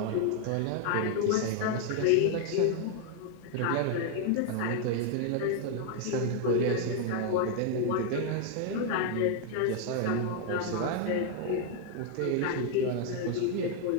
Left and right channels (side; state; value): both; different; correlation 0.00